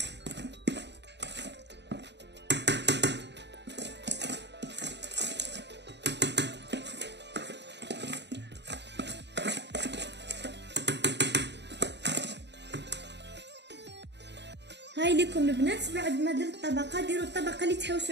هاي لكم البنات. بعد ما درت الطبقه ديروا الطبقه اللي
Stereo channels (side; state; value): left; late; 0.50 ms